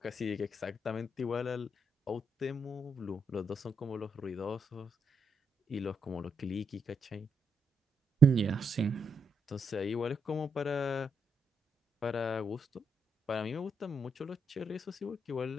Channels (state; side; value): normal; both; correlation 0.79